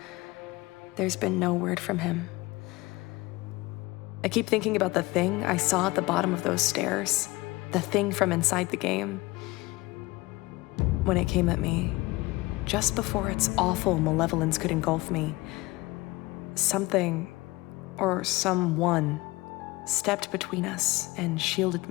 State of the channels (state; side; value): quieter; right; 21.3 dB